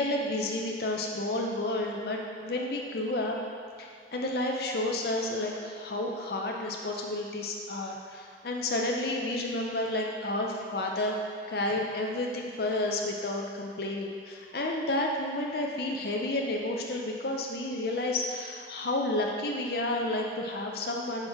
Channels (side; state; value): both; normal; correlation 0.14